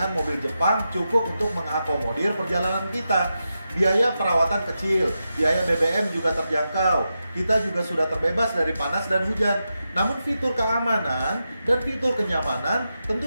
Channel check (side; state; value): both; inverted; correlation -0.89